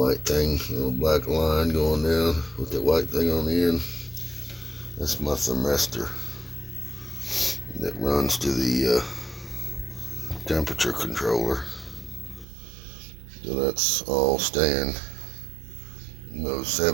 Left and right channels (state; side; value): drops out; left; at 12.5 s